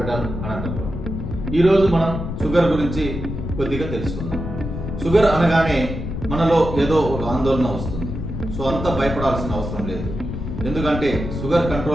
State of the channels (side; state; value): left; noise; rumble, 6 dB below the sound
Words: Anantapur. ఈరోజు మనం షుగర్ గురించి కొద్దిగా తెలుసుకుందాం. షుగర్ అనగానే మనలో ఏదో ఒక ఆందోళన వస్తుంది. సో అంత భయపడాల్సిన అవసరం లేదు. ఎందుకంటే షుగర్